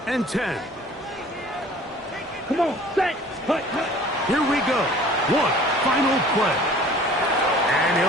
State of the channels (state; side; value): normal; both; correlation 0.49